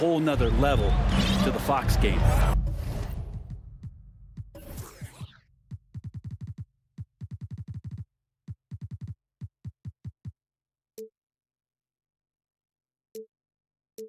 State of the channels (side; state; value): both; identical; correlation 1.00